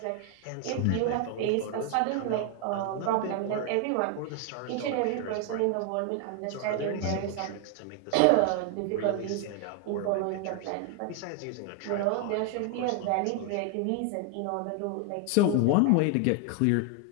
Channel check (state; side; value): different; both; correlation 0.01